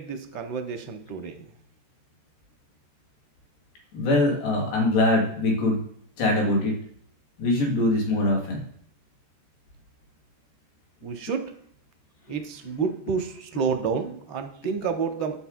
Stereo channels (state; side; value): late; right; 13 ms